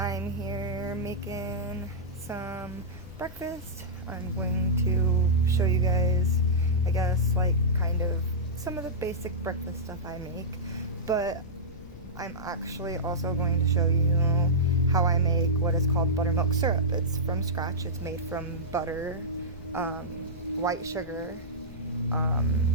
here making some breakfast. I'm going to show you guys, I guess, like kind of some of the basic breakfast stuff I make, but I'm actually also going to show you how I make what is called buttermilk syrup. It's from scratch. It's made from butter, white sugar,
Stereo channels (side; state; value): left; noise; rumble, 16 dB below the sound